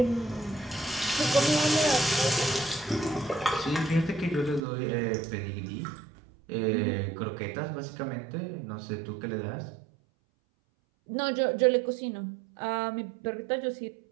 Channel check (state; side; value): drops out; left; at 4.6 s